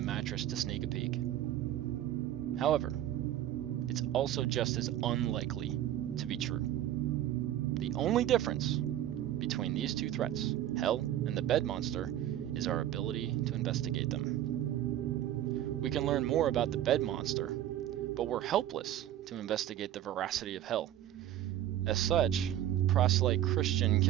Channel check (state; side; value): quieter; left; 12.2 dB